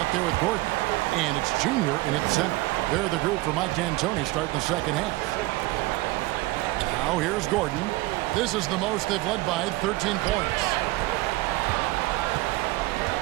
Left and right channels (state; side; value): quieter; left; 20.0 dB